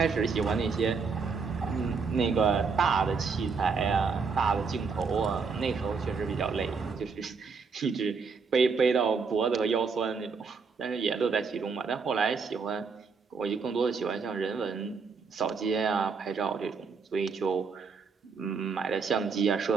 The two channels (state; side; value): quieter; left; 5.2 dB